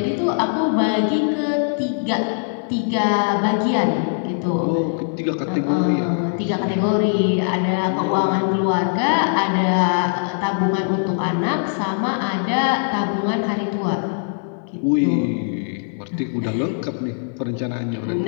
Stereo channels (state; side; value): silent; right; digital silence